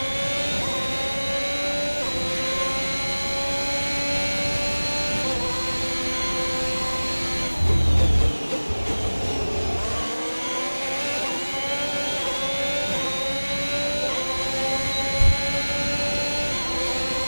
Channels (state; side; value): inverted; both; correlation -1.00